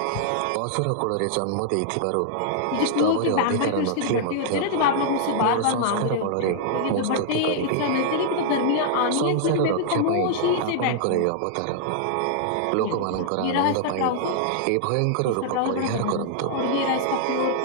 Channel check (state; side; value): different; both; correlation -0.01